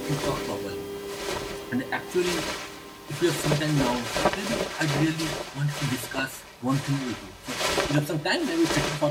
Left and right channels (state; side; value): identical; both; correlation 1.00